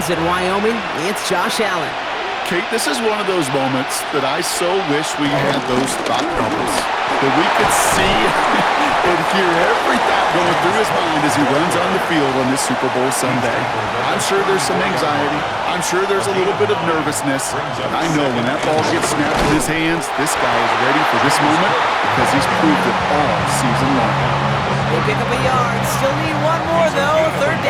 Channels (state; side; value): identical; both; correlation 1.00